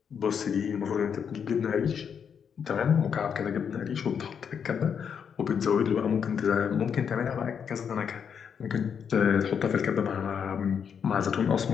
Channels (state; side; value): quieter; right; 7.3 dB